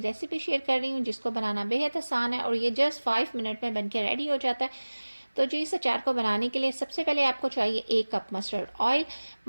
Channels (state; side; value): inverted; both; correlation -1.00